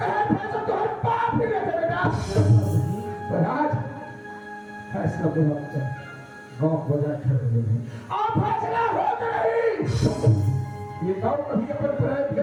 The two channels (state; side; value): identical; both; correlation 1.00